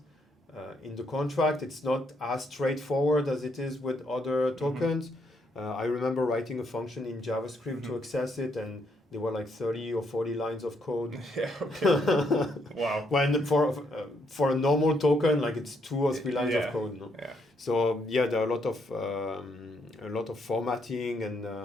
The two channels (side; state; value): both; normal; correlation 0.74